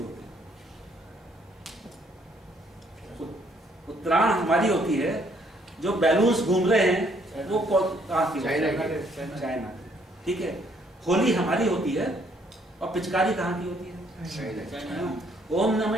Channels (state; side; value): normal; both; correlation 0.66